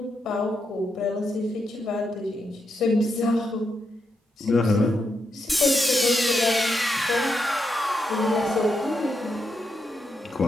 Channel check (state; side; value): normal; both; correlation 0.82